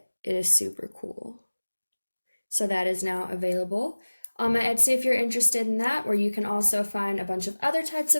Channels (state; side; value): inverted; both; correlation -1.00